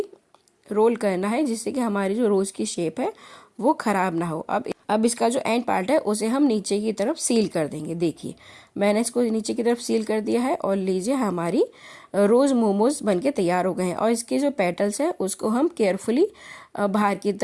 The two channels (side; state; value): both; identical; correlation 1.00